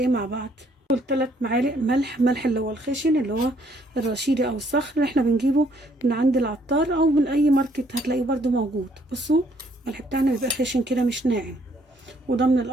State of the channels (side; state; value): both; normal; correlation 0.66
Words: مع بعض؟ 3 معالق ملح اللي هو الخشن، اللي هو الرشيدي أو الصخر اللي احنا بنجيبه من عند العطار أو من أي ماركت هتلاقيه برده موجود. بصوا الملح بتاعنا بيبقى خشن كده مش ناعم، وده من